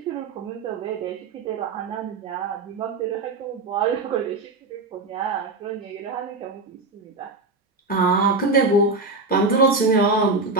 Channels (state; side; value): quieter; left; 3.4 dB